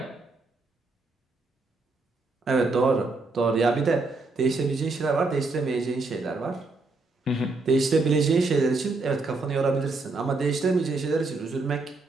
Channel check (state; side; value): quieter; left; 3.5 dB